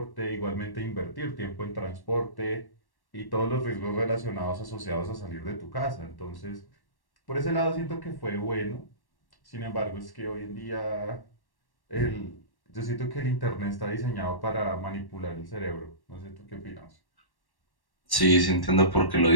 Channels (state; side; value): late; right; 1.1 ms